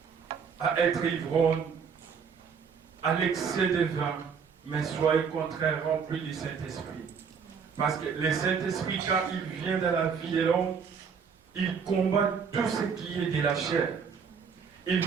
à être ivrogne, à l'excès de vin, mais soyez au contraire rempli du Saint-Esprit. Parce que le Saint-Esprit, quand il vient dans la vie de l'homme, il combat tout ce qui est de la chair. Il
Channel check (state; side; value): quieter; left; 6.3 dB